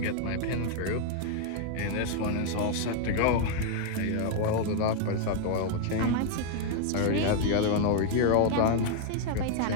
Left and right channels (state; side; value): different; both; correlation 0.00